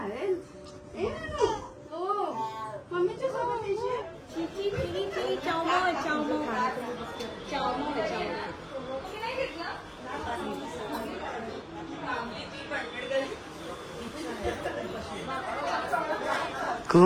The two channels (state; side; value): identical; both; correlation 1.00